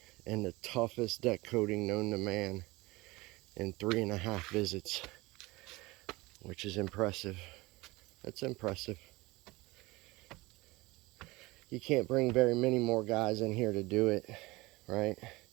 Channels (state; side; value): quieter; left; 22.0 dB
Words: in the toughest deck coating known to man in 3.5 visits, which is impressive. That's impressive. You can't bring very many more guys in here to do it, right?